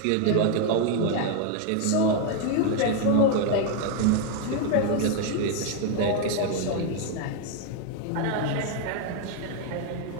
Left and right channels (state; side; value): different; both; correlation 0.00